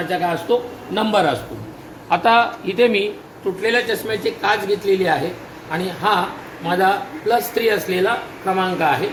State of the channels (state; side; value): identical; both; correlation 1.00